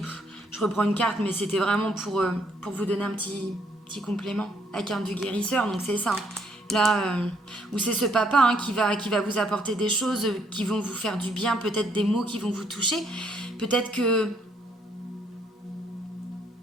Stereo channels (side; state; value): both; normal; correlation 0.69